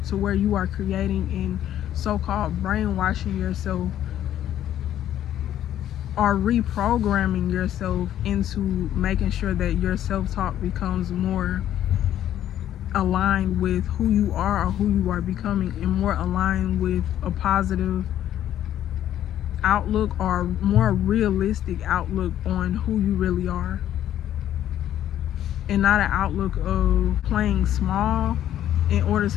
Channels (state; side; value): quieter; right; 11.5 dB